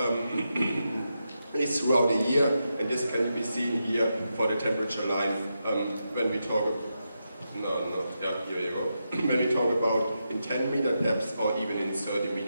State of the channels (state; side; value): inverted; both; correlation -0.86